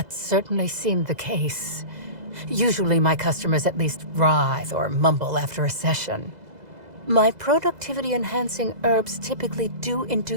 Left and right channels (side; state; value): left; late; 2.0 ms